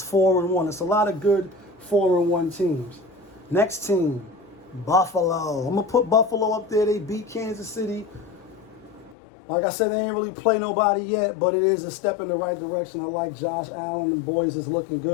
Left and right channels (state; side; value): drops out; right; at 9.2 s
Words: 4-1. It's a lot of good 4-1 teams. Next team, Buffalo. I'm going to put Buffalo up there. They beat Kansas City. Like I said, they ain't really play nobody yet, but it is a step in the right direction. I like Josh Allen and boys is looking